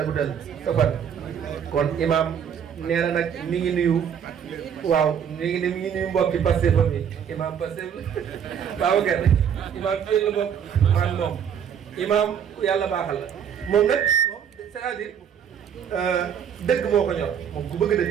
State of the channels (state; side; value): quieter; left; 8.2 dB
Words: guddal sa fan kon imam nee na nag mi ngi nuyu waaw mi ngi nuyu mbokki Pastef fa mi imam Pastef waaw kenn imam fii la bokk man moom imam yàlla baaxal la moom nag moom c'est-à-dire dëgg moo ko ñor moom ku bëgg